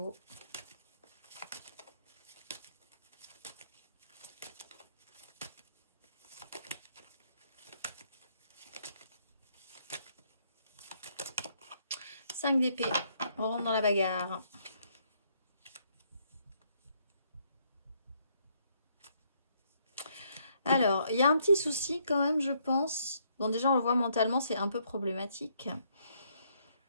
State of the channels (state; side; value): inverted; both; correlation -0.71